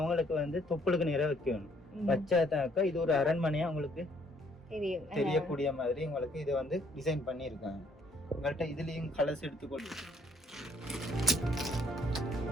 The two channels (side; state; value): both; normal; correlation 0.65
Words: வந்து தொப்புளுக்கு நேரா வைக்கணும். வச்சாதாக்கா இது ஒரு அரண்மனையா அவங்களுக்கு தெரியக்கூடிய மாதிரி உங்களுக்கு இதை வந்து டிசைன் பண்ணியிருக்காங்க. உங்கள்கிட்ட இதுலயும் கலர்ஸ் எடுத்துக்கொண்டு